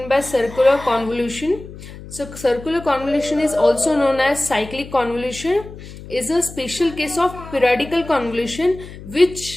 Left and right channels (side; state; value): left; noise; hum, 15 dB below the sound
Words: by circular convolution. So circular convolution is also known as cyclic convolution, is a special case of periodical convolution,